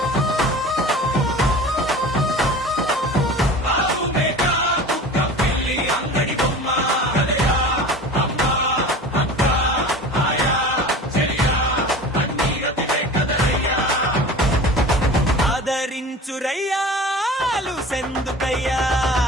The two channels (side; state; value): both; normal; correlation 0.37